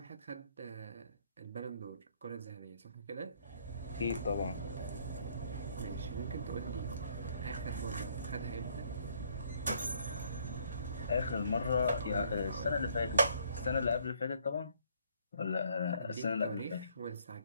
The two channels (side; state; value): both; inverted; correlation -0.65